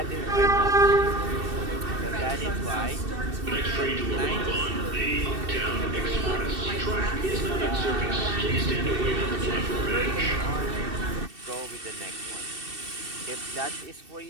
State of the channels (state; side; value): late; left; 2.7 ms